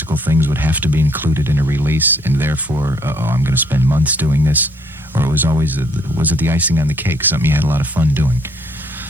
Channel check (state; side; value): normal; both; correlation 0.66